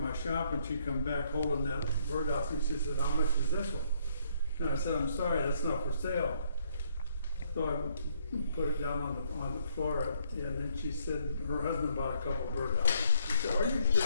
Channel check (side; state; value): both; inverted; correlation -0.69